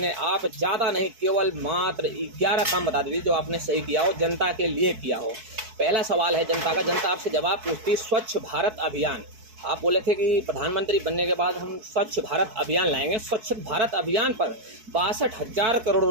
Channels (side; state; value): left; late; 4.6 ms